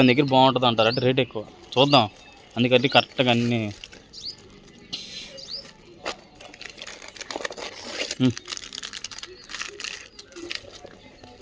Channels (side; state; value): both; identical; correlation 1.00